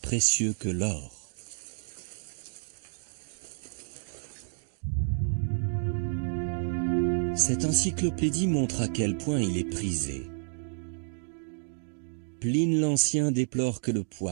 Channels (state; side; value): silent; left; digital silence